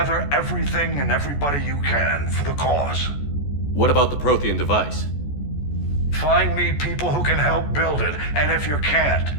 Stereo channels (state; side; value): late; right; 14 ms